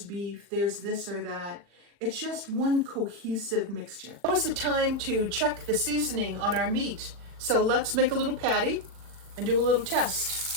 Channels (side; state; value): left; late; 40 ms